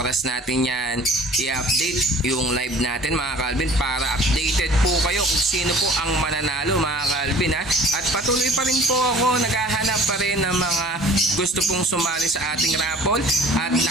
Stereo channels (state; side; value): normal; both; correlation 0.48